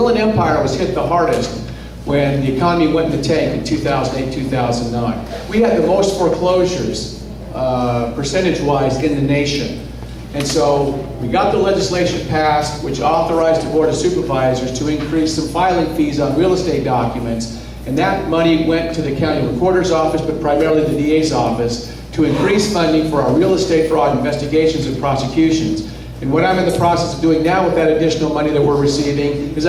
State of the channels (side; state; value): both; identical; correlation 1.00